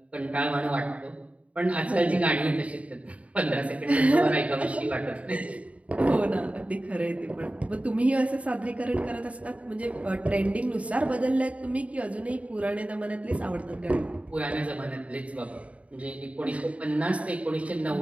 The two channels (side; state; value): left; late; 0.066 ms